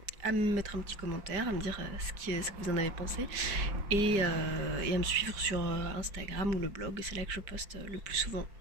à me mettre un petit commentaire, à me dire ce que vous en avez pensé et à me suivre sur Instagram ou le blog, c'est là que je poste le plus souvent.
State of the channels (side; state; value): left; late; 5.1 ms